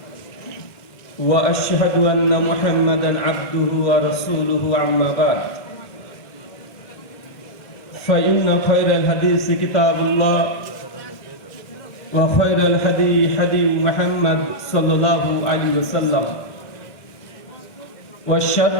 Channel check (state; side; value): late; right; 1.5 ms